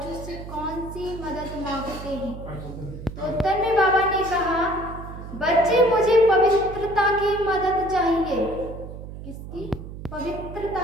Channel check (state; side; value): noise; right; hum, 11 dB below the sound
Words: से कौन सी मदद मांगते हैं? तो उत्तर में बाबा ने कहा, बच्चे मुझे पवित्रता की मदद चाहिए। किसकी?